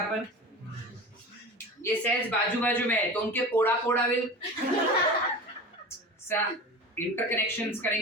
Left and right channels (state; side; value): normal; both; correlation 0.32